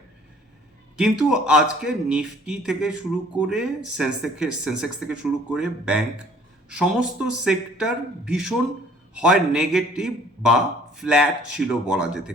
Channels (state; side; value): normal; both; correlation 0.56